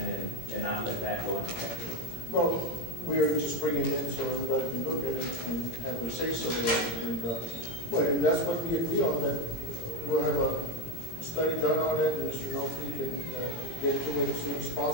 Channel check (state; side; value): late; right; 17 ms